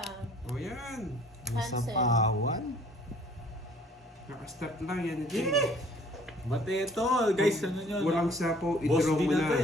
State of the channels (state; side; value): normal; both; correlation 0.56